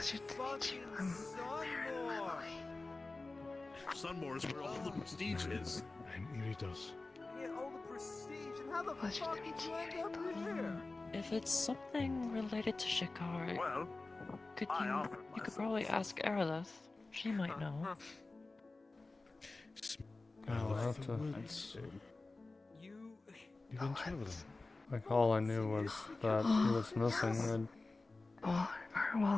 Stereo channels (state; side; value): quieter; right; 3.4 dB